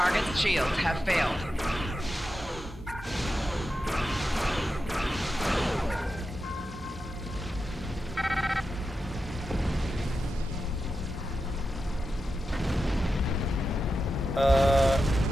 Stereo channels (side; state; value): both; normal; correlation 0.89